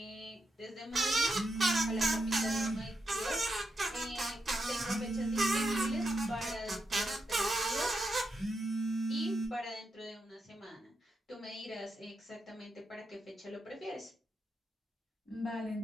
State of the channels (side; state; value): both; normal; correlation 0.84